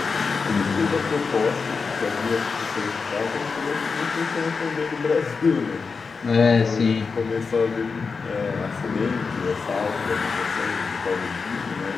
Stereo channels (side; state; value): right; quieter; 4.9 dB